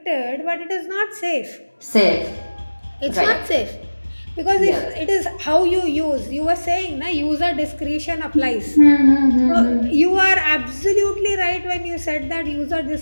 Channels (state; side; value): inverted; both; correlation -1.00